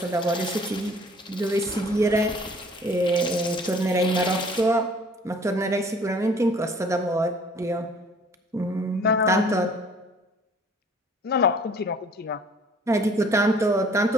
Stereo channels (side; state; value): both; normal; correlation 0.54